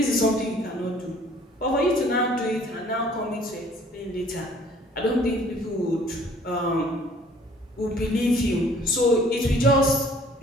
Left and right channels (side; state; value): both; normal; correlation 0.56